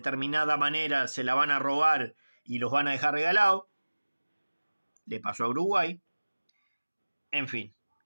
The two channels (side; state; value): both; inverted; correlation -1.00